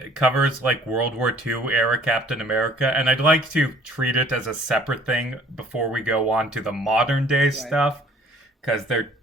covers like World War II era Captain America, and I'd like to treat it as a separate thing before we go on to the modern day stuff, because they're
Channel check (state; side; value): normal; both; correlation 0.56